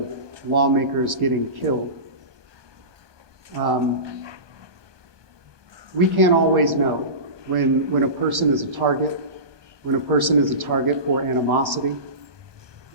lawmakers getting killed. We can't always know when a person is a target, when a person is a target for animosity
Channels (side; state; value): left; late; 1.2 ms